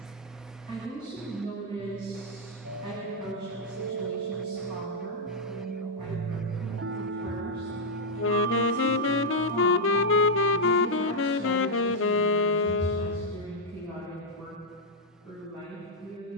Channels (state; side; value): normal; both; correlation -0.04